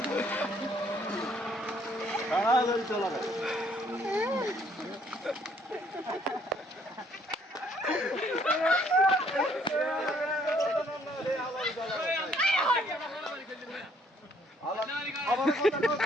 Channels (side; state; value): both; normal; correlation 0.65